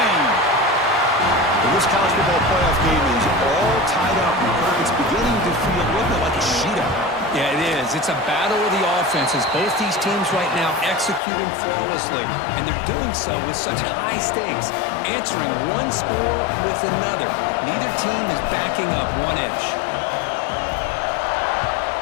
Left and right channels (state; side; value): drops out; right; at 11.2 s